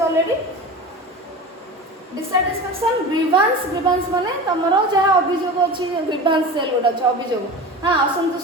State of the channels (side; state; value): both; normal; correlation 0.31